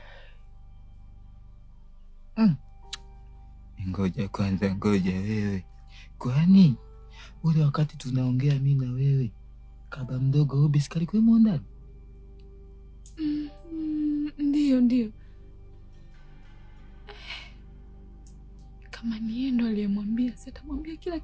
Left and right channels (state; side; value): identical; both; correlation 1.00